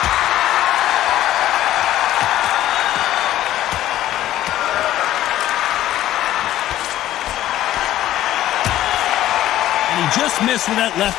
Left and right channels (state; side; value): quieter; right; 13.6 dB